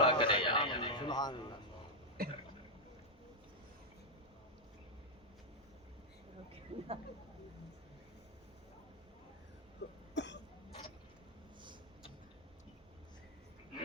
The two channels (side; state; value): both; normal; correlation -0.01